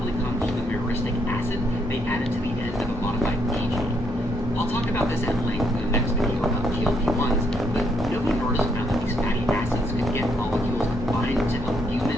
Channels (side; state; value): both; normal; correlation 0.74